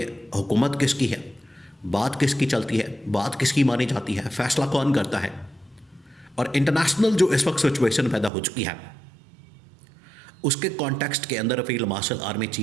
हुकूमत किसकी है, बात किसकी चलती है, बात किसकी मानी जाती है, फ़ैसला कौन करता है। और इंटरनेशनल जो इस वक्त सिचुएशन पैदा हो चुकी है, उसके कॉन्टेक्स्ट के अंदर field marshal army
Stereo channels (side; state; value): left; drops out; at 8.3 s